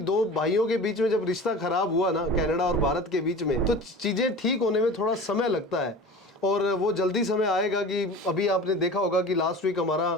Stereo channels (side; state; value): both; normal; correlation 0.37